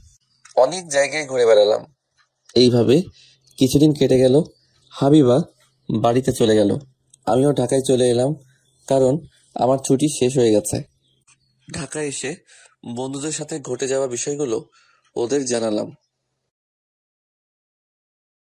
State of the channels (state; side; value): identical; both; correlation 1.00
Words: অনেক জায়গায় ঘুরে বেড়ালাম। এইভাবে কিছুদিন কেটে গেল। হাবিবা বাড়িতে চলে গেল, আমিও ঢাকায় চলে এলাম, কারণ আমার ছুটি শেষ হয়ে গেছে। ঢাকায় এসে বন্ধুদের সাথে ঘটে যাওয়া বিষয়গুলো ওদের জানালাম।